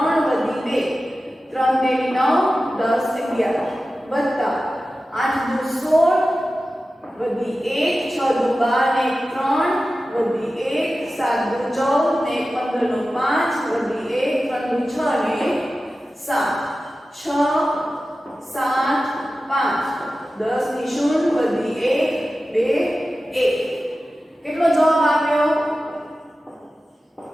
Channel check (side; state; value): both; normal; correlation 0.94